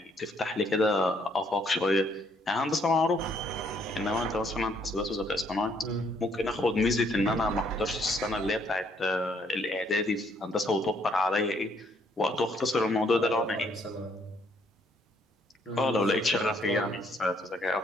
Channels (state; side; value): normal; both; correlation 0.67